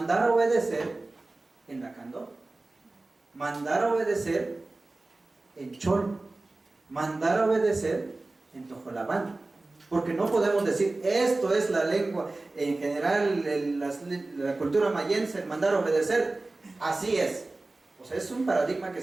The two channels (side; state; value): left; quieter; 3.1 dB